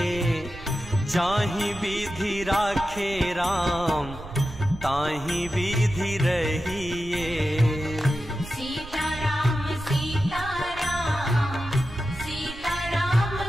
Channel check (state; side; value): noise; right; rumble, 14 dB below the sound